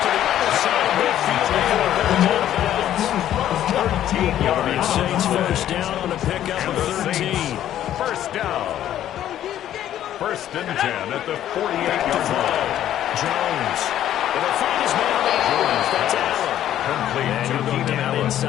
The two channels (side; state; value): right; quieter; 11.7 dB